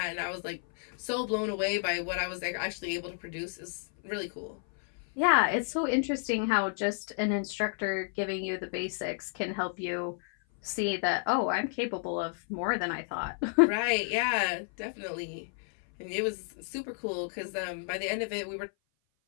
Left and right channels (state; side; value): silent; right; 56 dB below the other